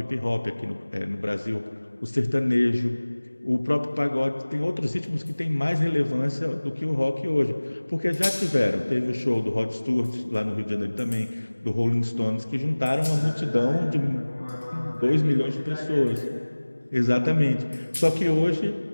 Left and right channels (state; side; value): inverted; both; correlation -1.00